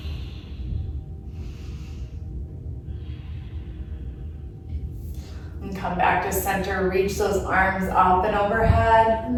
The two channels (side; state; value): both; identical; correlation 1.00